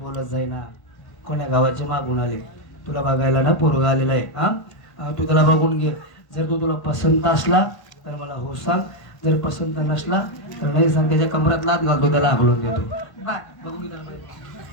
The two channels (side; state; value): right; late; 1.1 ms